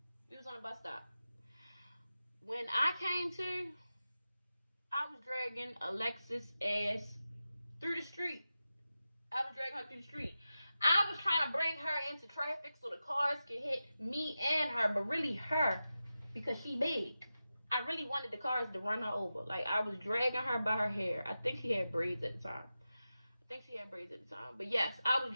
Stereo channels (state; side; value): inverted; both; correlation -0.93